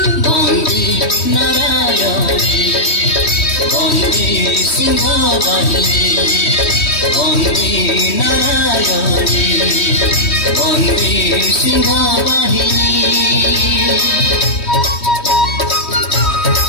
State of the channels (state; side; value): late; right; 3.1 ms